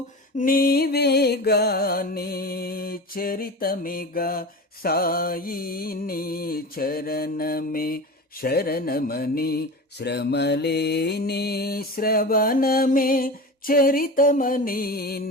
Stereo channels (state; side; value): normal; both; correlation 0.29